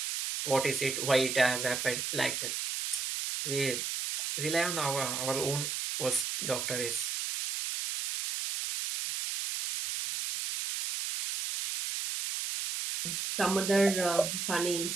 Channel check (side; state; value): right; noise; hiss, 2 dB below the sound